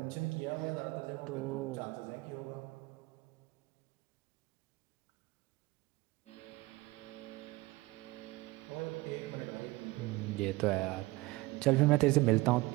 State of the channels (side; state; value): left; quieter; 21.3 dB